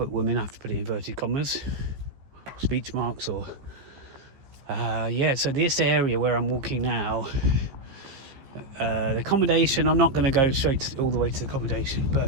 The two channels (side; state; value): left; late; 15 ms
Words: Women. I have to put it in inverted commas, speech marks, or so this area where I'm walking now, the accommodation, I'm not going to go all the way to the accommodation,